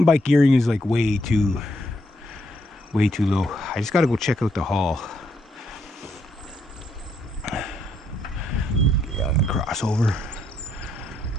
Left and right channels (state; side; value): normal; both; correlation 0.75